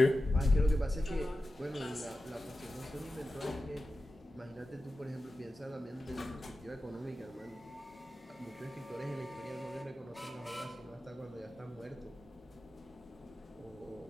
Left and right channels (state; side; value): normal; both; correlation 0.93